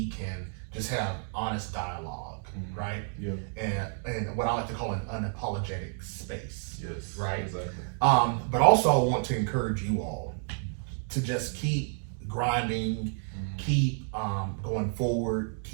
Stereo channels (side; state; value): left; silent; 58 dB below the other